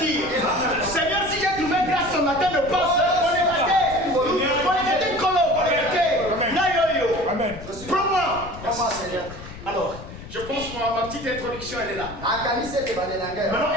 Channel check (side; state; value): left; noise; rumble, 14 dB below the sound